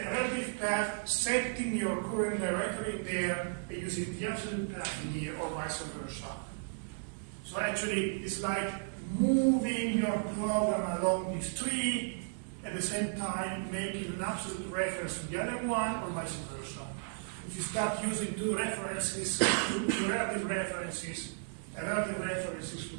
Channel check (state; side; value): silent; left; 55 dB below the other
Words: relative path, setting your current directory there, and using the absolute path in here, or vice versa. So actually, it's like moving your program along this tree, at the same time making an absolute reference to the other one, or vice versa. If you start using two references, two relative references, relative references to